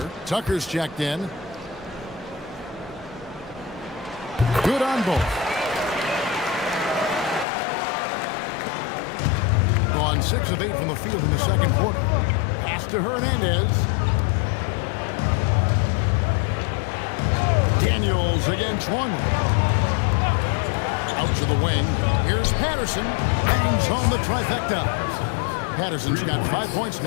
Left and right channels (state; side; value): drops out; right; at 7.5 s